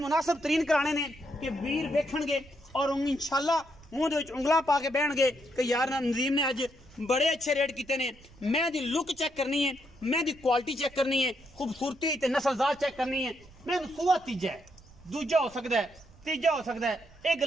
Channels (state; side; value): noise; right; rumble, 24 dB below the sound